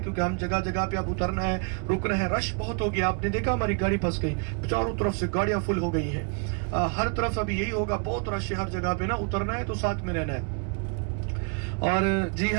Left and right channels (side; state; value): left; quieter; 38.1 dB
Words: हम जगह जगह पे अब उतरना है, रुकना है, रश बहुत हो गया। आपने देखा हमारी गाड़ी फंस गई, चारों तरफ से गाड़ियाँ फुल हो गई है। हर तरफ अभी यही होगा, बहुत रश है हर जगह पे ना, उतरना है तो साथ में रहना है। और जी